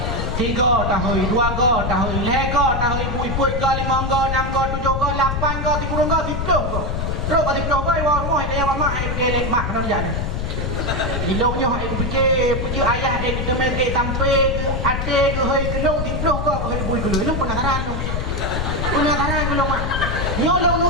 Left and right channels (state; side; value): noise; left; rumble, 2 dB below the sound